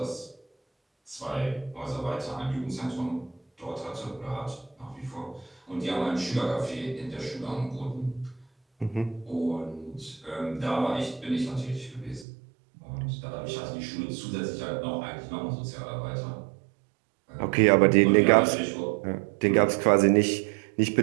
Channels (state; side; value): drops out; left; at 12.2 s